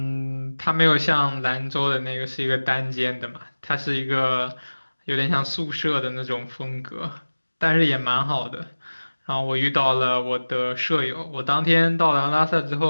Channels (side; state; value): both; inverted; correlation -1.00